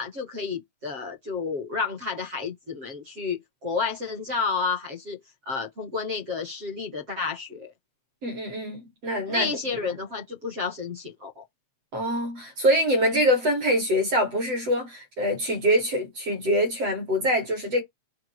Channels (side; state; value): left; late; 7.8 ms